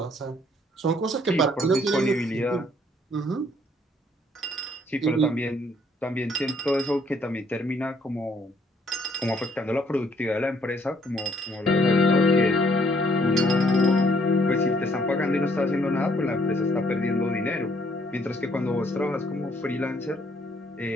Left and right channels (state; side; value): normal; both; correlation 0.66